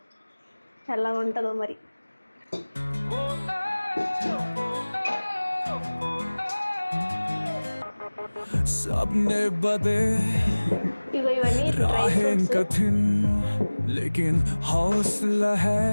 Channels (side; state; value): both; inverted; correlation -1.00